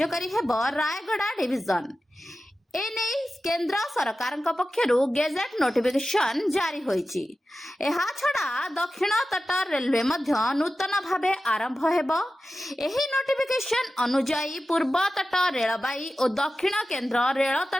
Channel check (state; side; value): normal; both; correlation 0.94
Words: हेब। रायगड़ा डिविजन एने केंद्र सरकार पक्षरु गेजेट नोटिफिकेशन जारी होईची। एहा छड़ा दक्षिण तट रेलवे मध्य नूतन भावे आरंभ हेबो। एही नोटिफिकेशन अनुजाई पूर्व तट रेलबाई और दक्षिण केंद्र रेल